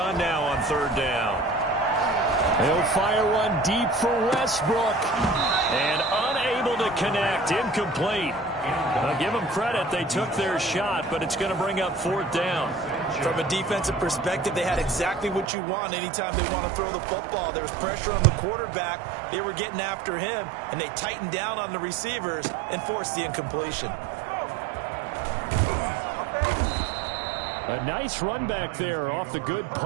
now on 3rd down. He'll fire one deep for Westbrook. And unable to connect. Incomplete. Now, give them credit. They took their shot, but it's going to bring up 4th down. From a defensive perspective, they had exactly what you want anytime they want to throw the football. There was pressure on the quarterback. They were getting after him, and they tightened down on the receivers and forced the incompletion. A nice run back there off the good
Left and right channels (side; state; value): left; drops out; at 15.5 s